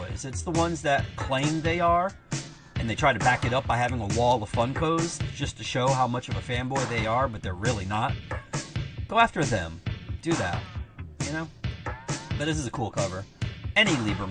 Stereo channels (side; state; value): both; identical; correlation 1.00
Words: It's the ones that claim they are, and they try to back it up by having a wall of Funkos just to show how much of a fanboy they are, but they're really not. Go after them. Do that. You know? But this is a cool cover. Any Lee